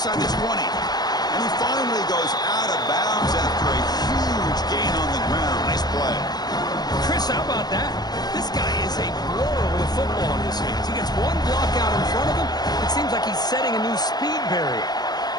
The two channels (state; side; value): late; right; 0.19 ms